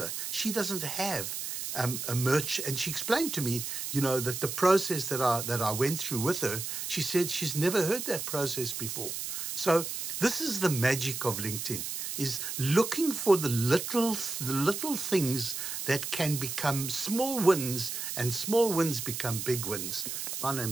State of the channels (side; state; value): right; noise; hiss, 5 dB below the sound